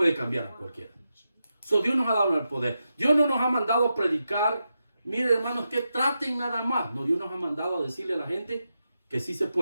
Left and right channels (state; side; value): inverted; both; correlation -0.87